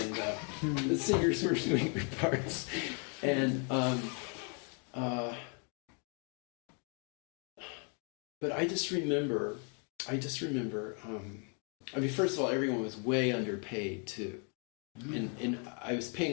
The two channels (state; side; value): quieter; right; 39.2 dB